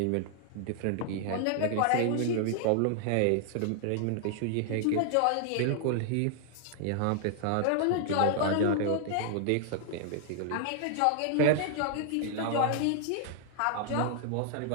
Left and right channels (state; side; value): different; both; correlation 0.00